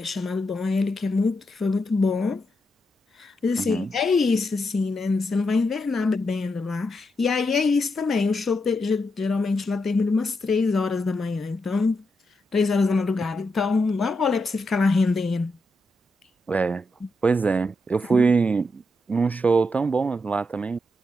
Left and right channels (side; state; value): both; normal; correlation 0.84